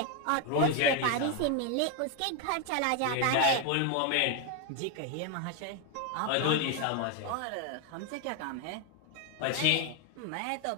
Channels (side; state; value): both; different; correlation 0.01